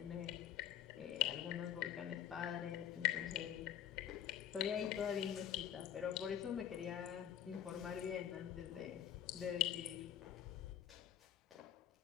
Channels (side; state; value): right; quieter; 10.5 dB